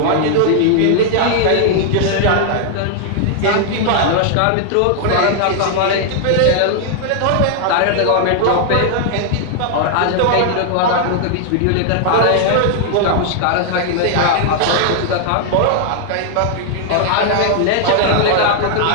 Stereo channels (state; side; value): different; both; correlation 0.00